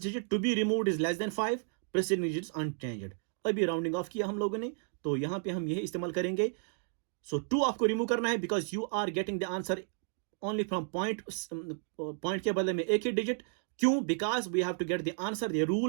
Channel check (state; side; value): silent; left; 56 dB below the other